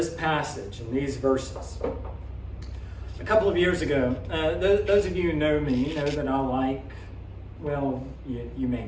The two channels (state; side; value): identical; both; correlation 1.00